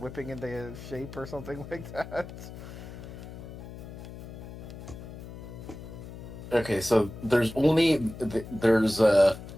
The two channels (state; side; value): noise; left; hum, 12 dB below the sound